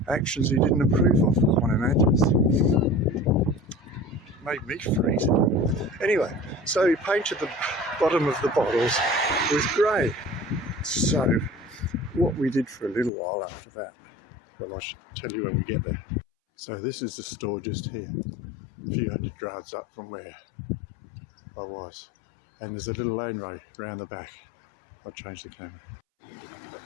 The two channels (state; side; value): drops out; right; at 13.1 s